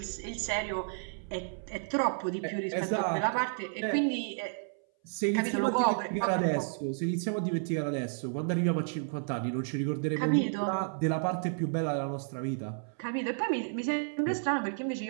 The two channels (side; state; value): left; silent; 57 dB below the other